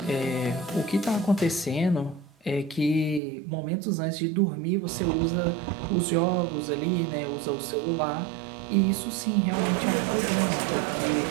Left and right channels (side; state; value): left; drops out; at 3.2 s